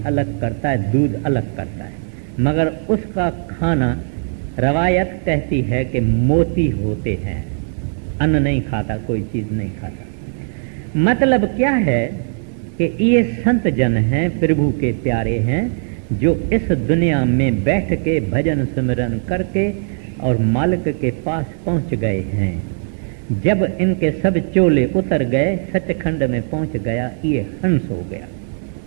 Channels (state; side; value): silent; left; digital silence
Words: अलग करता है, दूध अलग करता है, मगर उसका खाना रवायत कहती है कि मोती होते हैं। अन्न नहीं खाता, कोई चीज नहीं खाता। मतलब क्या है कि ये संत जन हैं, प्रभु के प्यारे हैं, जो इस दुनिया में बैठ के भजन सिमरन करके और मालिक के पास पहुंच गए हैं। जब इनके सब चोले उतर गए, सचखंड में पहुंच गया, ये हंस हो गया।